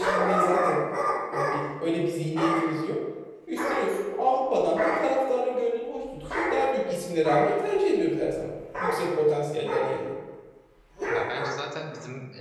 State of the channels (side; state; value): both; identical; correlation 1.00